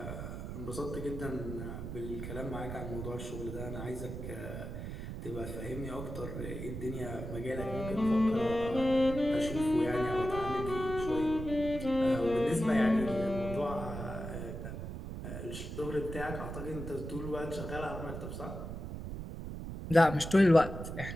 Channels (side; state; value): right; noise; rumble, 7 dB below the sound